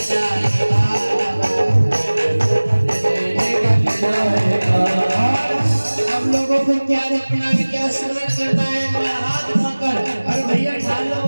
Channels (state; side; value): inverted; both; correlation -1.00